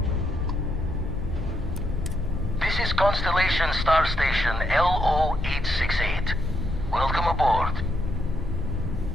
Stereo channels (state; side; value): normal; both; correlation 0.78